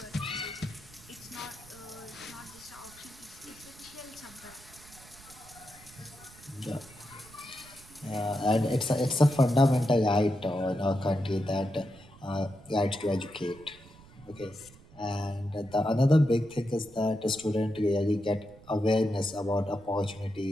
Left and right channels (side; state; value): right; noise; rumble, 22 dB below the sound